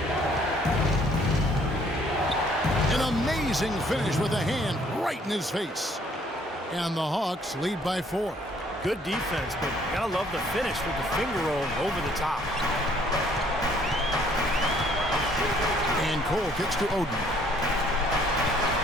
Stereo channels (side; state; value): both; normal; correlation 0.62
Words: An amazing finish with a hand right in his face. And the Hawks lead by 4. Good defense, but gotta love the finish with the finger roll over the top. And Cole kicks to Oden.